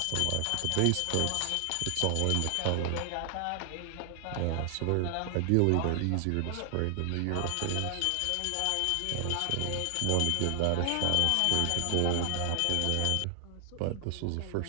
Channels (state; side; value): different; both; correlation 0.00